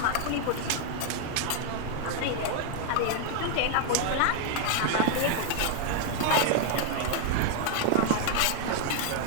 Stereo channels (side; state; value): both; different; correlation 0.00